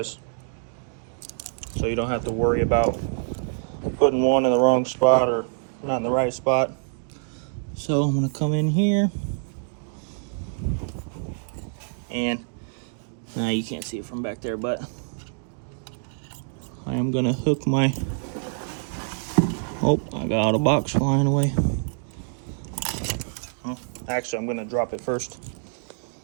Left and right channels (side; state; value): left; silent; digital silence